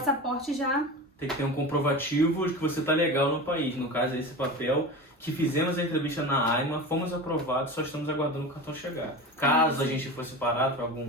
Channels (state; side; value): normal; both; correlation 0.29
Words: já... Tem que ter um comprovativo de que você está legal no país. No caso, esse papel que fizemos a entrevista na AIMA, fomos aprovados, só estamos aguardando o cartão chegar. Caso a gente fosse parado para